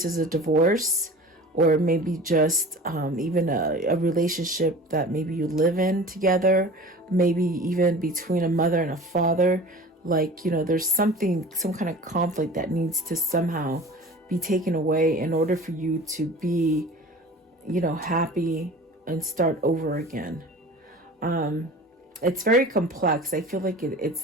is a divorce or maybe just even a relationship that maybe you live in together, maybe even between a mother and a father. Like, you know, there's some kind of conflict that needs to somehow be taken away in order for you to be, you know, happy and start over again. It's very complex. I feel like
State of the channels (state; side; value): normal; both; correlation 0.40